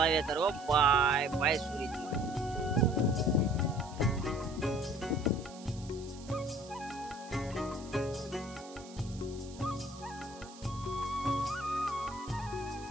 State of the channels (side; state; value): right; noise; hiss, 19 dB below the sound